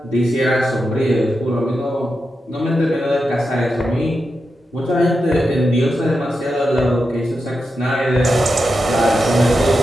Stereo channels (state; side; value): normal; both; correlation 0.88